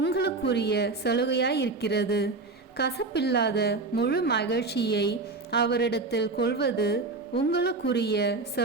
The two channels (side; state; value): left; quieter; 3.7 dB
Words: சலுகையாயிருக்கிறது. கசப்பில்லாத முழு மகிழ்ச்சியை அவரிடத்தில் கொள்வது உங்களுக்குரிய